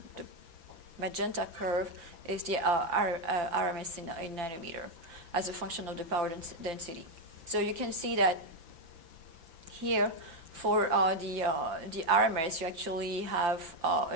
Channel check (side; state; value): left; late; 5.8 ms